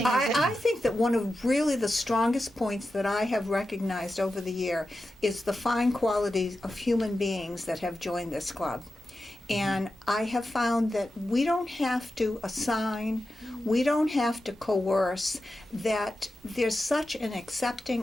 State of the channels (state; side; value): normal; both; correlation 0.91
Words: is that I think that one of really the strongest points that I have recognized over the year is the fine qualities of human beings that have joined this club. And I have found that we don't have to assign, we don't have to coerce, that there's such an